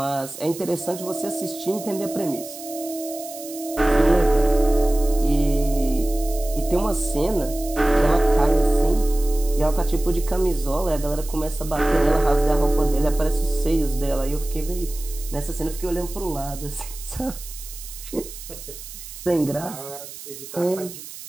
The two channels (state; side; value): noise; right; hiss, 13 dB below the sound